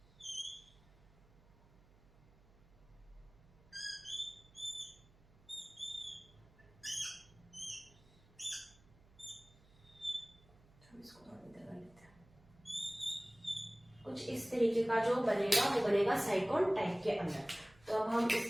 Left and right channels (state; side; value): noise; right; hum, 27 dB below the sound